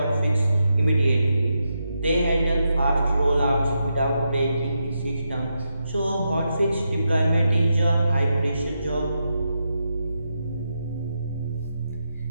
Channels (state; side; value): inverted; both; correlation -0.85